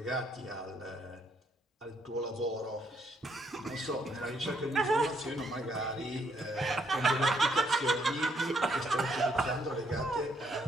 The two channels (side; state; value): both; normal; correlation 0.71